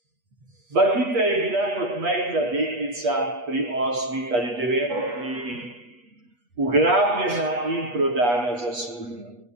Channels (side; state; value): left; late; 8.3 ms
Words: Bakita je bila kot majhna deklica pri 8 ali 9 letih ugrabljena in prodana za sužnjo.